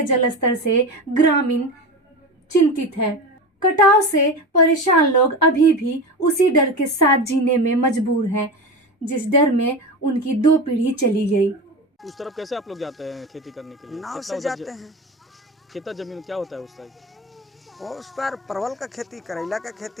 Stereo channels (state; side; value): normal; both; correlation 0.25